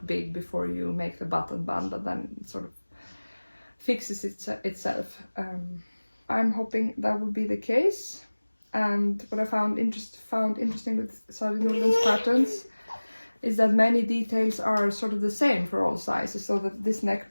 big before you make the button band, but then it sort of fixes itself. I'm hoping that will be the case. And what I found interesting with Sari N's patterns is that many details are sort of the same for all sizes, so that this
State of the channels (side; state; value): both; inverted; correlation -1.00